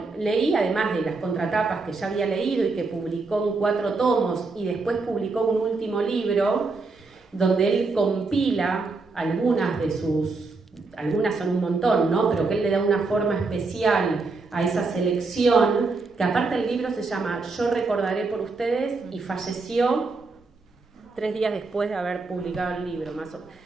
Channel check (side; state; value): left; quieter; 3.9 dB